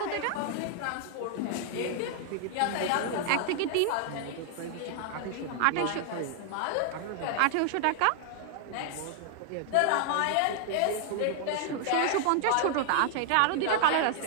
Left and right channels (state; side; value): different; both; correlation 0.00